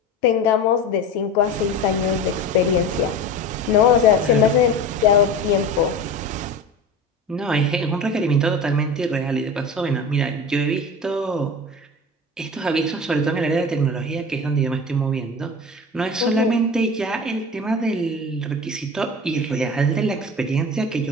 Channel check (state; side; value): normal; both; correlation 0.32